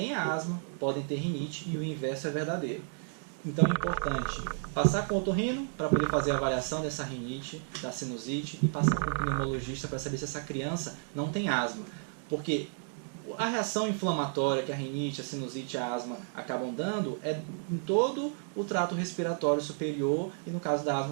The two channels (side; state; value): left; silent; 56 dB below the other